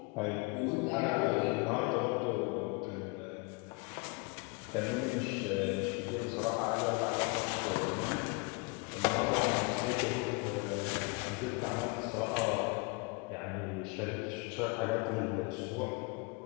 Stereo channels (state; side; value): quieter; right; 30.5 dB